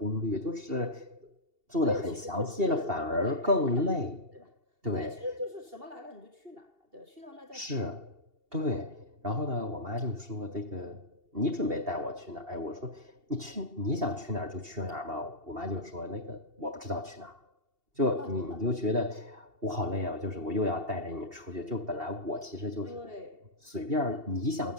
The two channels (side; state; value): left; late; 2.7 ms